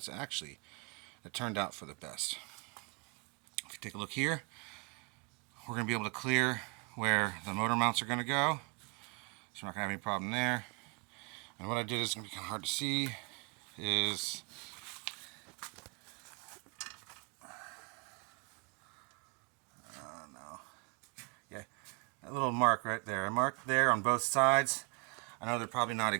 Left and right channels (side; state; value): left; quieter; 32.7 dB